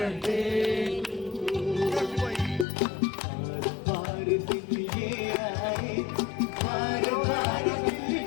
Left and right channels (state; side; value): drops out; right; at 2.7 s